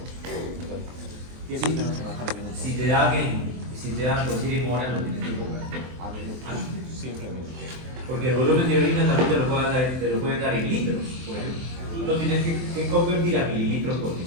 Sí, si te dan decir en horas, lo tienes que cobrar. A minutos. Siempre a minutos. Porque el volumen de orina también te lo pueden dar en litros, por ejemplo. Tú lo tienes que convertir a mililitros por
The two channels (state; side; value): late; left; 23 ms